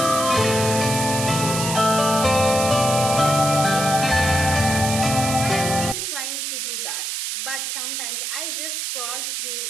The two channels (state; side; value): noise; right; hiss, 3 dB below the sound